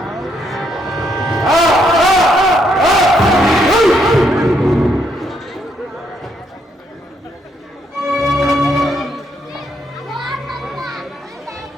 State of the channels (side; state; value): both; normal; correlation 0.74